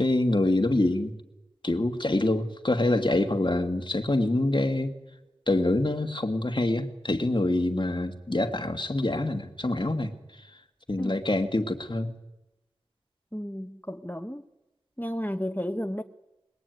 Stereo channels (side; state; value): both; normal; correlation 0.88